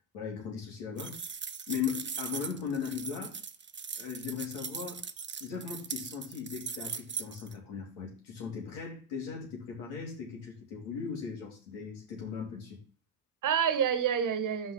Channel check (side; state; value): both; normal; correlation 0.01